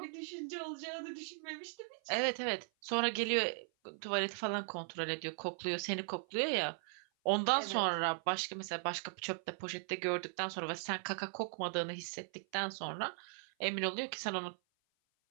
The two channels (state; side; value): silent; left; 52 dB below the other